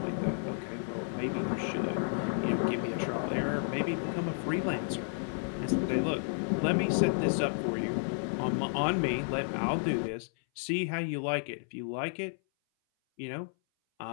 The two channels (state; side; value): silent; right; 57 dB below the other